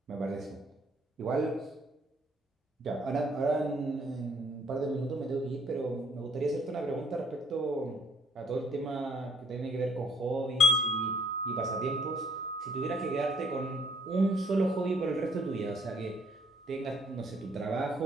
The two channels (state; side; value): normal; both; correlation 0.63